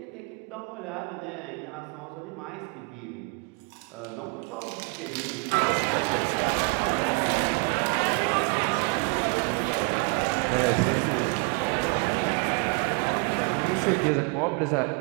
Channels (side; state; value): left; quieter; 35.0 dB